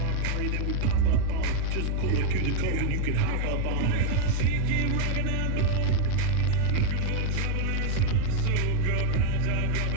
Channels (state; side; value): different; both; correlation 0.00